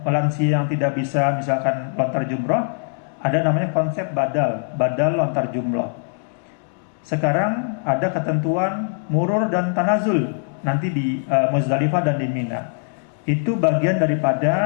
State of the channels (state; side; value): silent; right; digital silence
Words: lansia yang tidak bisa misalkan lontar jumrah, ada namanya konsep badal lontar jumrah. Sekarang ada ketentuan murur dan tanazul nanti di Muzdalifah dan di Mina. Itu bagian